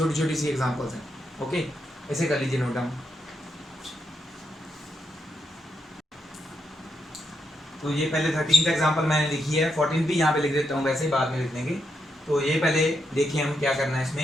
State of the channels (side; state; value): both; normal; correlation 0.82